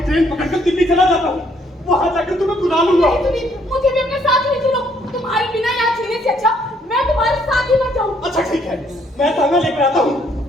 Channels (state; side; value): normal; both; correlation 0.67